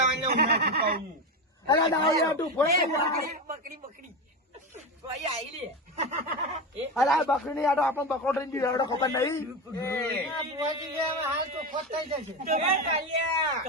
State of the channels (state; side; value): normal; both; correlation 0.18